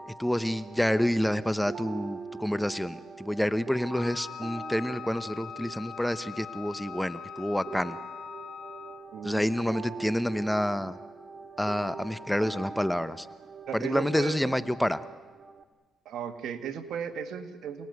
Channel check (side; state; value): both; normal; correlation 0.96